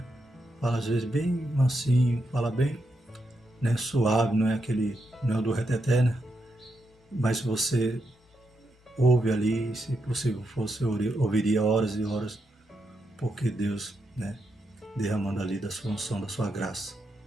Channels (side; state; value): both; normal; correlation 0.83